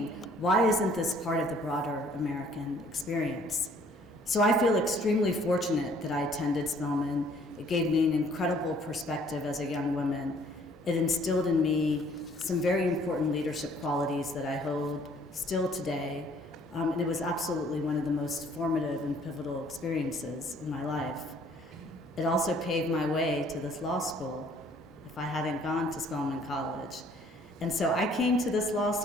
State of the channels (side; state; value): both; normal; correlation 0.59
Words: why isn't this part of the broader American experience? So I feel extremely fortunate that I attended Spelman. It gave me an incredible perspective as a young woman. It instilled in me some very important leadership qualities that I hold still today. And it was absolutely one of the most formative and pivotal experiences in my life. It also paved my way to this law school if I hadn't gone to Spelman College. And so I came to this law